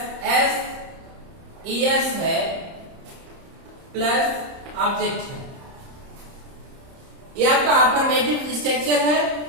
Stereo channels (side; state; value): left; late; 30 ms